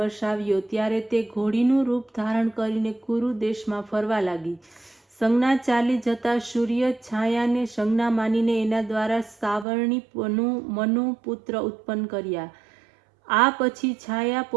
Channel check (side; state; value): left; drops out; at 9.7 s